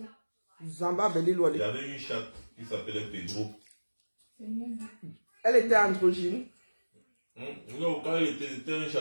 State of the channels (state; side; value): inverted; both; correlation -1.00